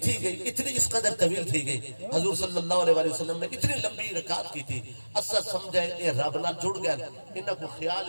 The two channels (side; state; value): both; inverted; correlation -1.00